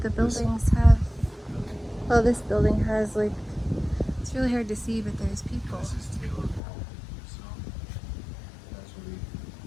buildings have. Well, this building has like. It's really hard to see, but there's people. This is Taylor Hall. So, as we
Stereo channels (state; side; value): drops out; right; at 6.6 s